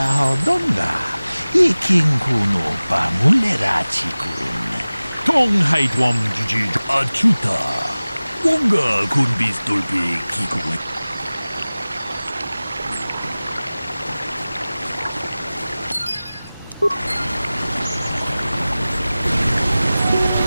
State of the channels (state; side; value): inverted; both; correlation -0.98